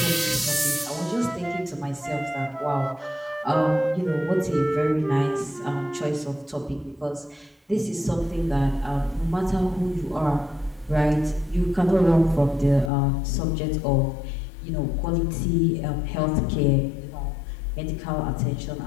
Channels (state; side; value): drops out; right; at 12.9 s